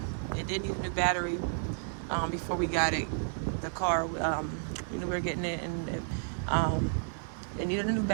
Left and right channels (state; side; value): silent; left; digital silence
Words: did need a new battery before we got it. The car, we were getting it, and it needed a new